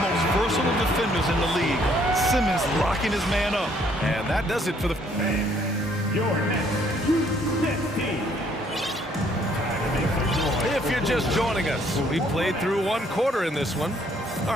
versatile defenders in the league. Simmons locking his man up. And that does it for the... Your next 2-16. If you're just joining us, we played through 1 quarter in this one. All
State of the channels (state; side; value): normal; both; correlation 0.65